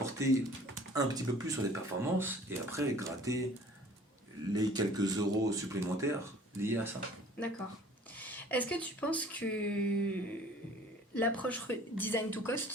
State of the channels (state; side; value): normal; both; correlation 0.51